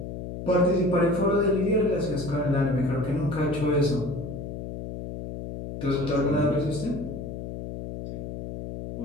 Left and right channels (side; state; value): left; noise; hum, 8 dB below the sound